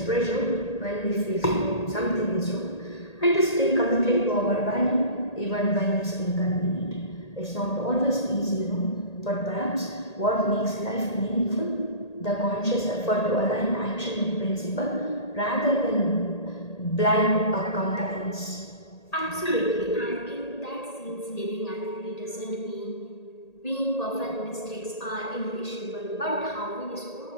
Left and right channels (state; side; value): late; right; 1.8 ms